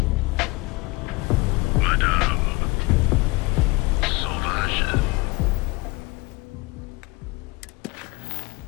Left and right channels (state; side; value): quieter; right; 23.6 dB